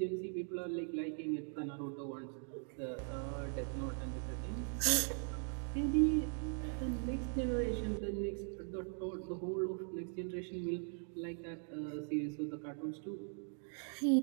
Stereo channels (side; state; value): left; silent; 51 dB below the other